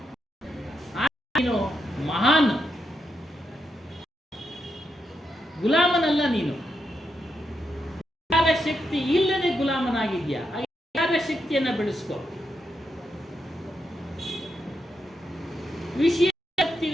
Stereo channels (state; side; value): normal; both; correlation 0.83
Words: ಗುಲಾಮನಲ್ಲ ನೀನು. ವಿಚಾರ ಶಕ್ತಿ ಇಲ್ಲದೆ ಗುಲಾಮನಾಗಿದ್ಯಾ. ವಿಚಾರ ಶಕ್ತಿಯನ್ನ ಬೆಳೆಸ್ಕೊ. ವಿಷಯ